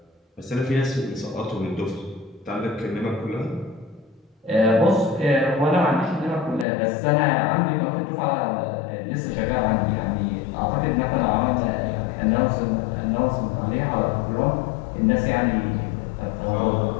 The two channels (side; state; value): right; drops out; at 6.7 s